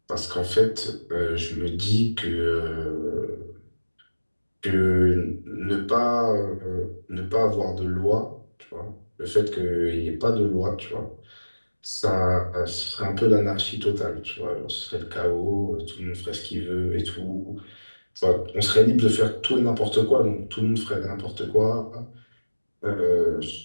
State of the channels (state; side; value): inverted; both; correlation -1.00